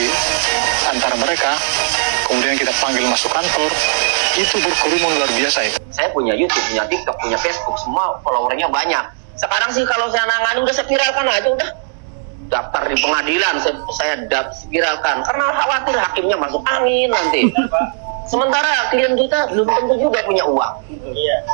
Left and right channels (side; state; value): left; silent; 68 dB below the other